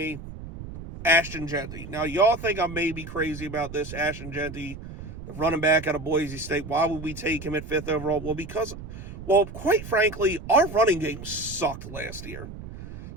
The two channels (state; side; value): noise; right; rumble, 12 dB below the sound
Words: Ashton Jeanty. Now, y'all think I may be crazy about this. Ashton Jeanty, the running back out of Boise State. Why would we take him at 5th overall? Well, quite frankly, our running game sucked last year.